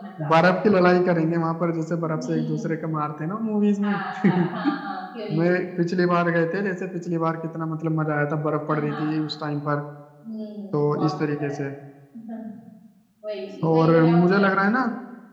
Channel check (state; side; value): identical; both; correlation 1.00